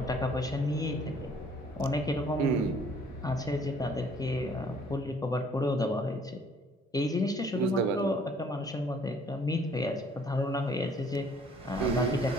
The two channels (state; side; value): normal; both; correlation 0.58